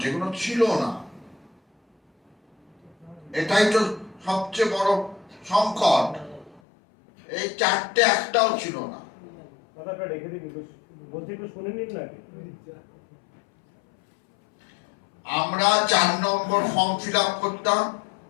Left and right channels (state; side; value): drops out; right; at 6.6 s